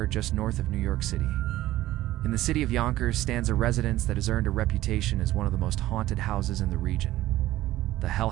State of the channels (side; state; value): left; quieter; 15.6 dB